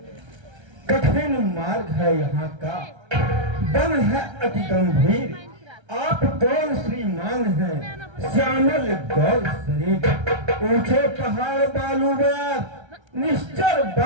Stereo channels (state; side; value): late; left; 1.3 ms